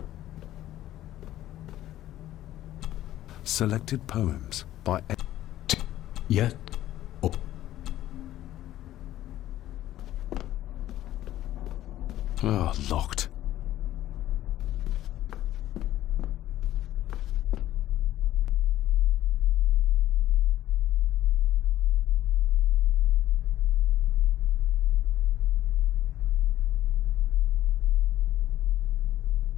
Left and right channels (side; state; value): right; quieter; 13.6 dB